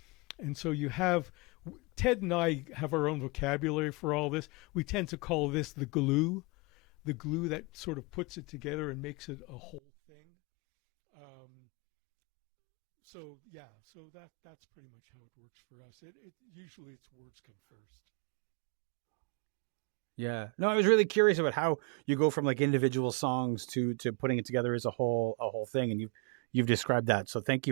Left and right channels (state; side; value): drops out; left; at 9.8 s